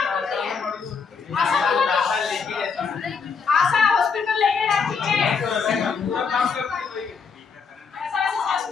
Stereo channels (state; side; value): quieter; right; 5.6 dB